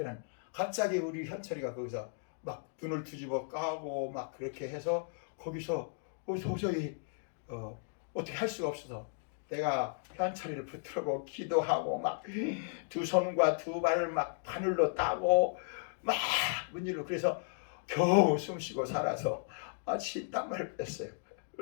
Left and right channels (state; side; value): silent; right; digital silence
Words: 갑자기 우리 현철이가 거기서 막 눈을 뒤집어 까고 막 그렇게 해서 거기서 도저히 어떻게 할 수가 없어서 내가 현철이를 붙들고 기도하고 막 두 손과 두 발을 막 바늘로 따고 막 문질러 그래서 겨우 숨쉬고 살아서 땀을 뺐어요.